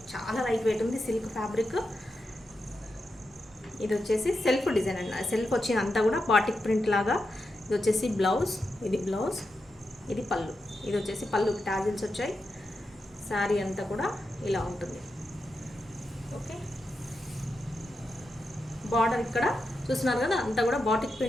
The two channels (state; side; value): normal; both; correlation 0.88